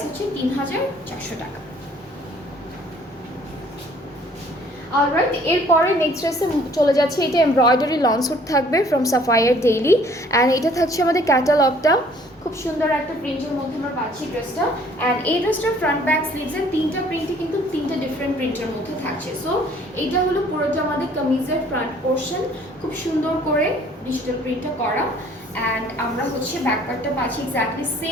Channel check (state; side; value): normal; both; correlation 0.57